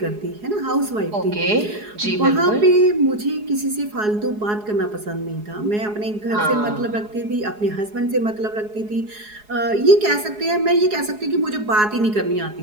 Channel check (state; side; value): late; left; 4.8 ms